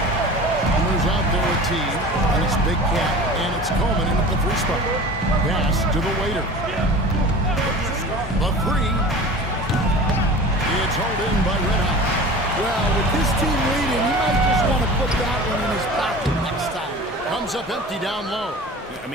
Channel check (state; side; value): normal; both; correlation 0.38